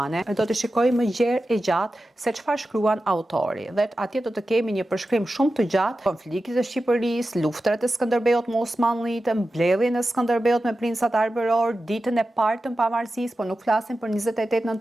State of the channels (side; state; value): both; normal; correlation 0.93